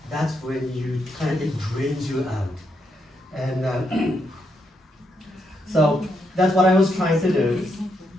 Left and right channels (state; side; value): normal; both; correlation 0.80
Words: That's when it drains you out. And so that's what I was trying to do.